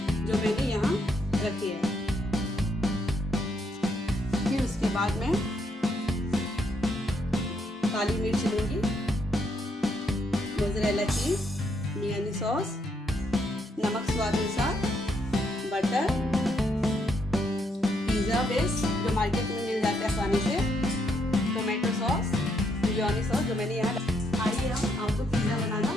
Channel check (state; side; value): normal; both; correlation 0.75